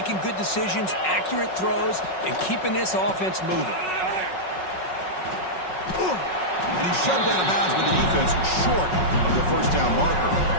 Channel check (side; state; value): right; late; 5.4 ms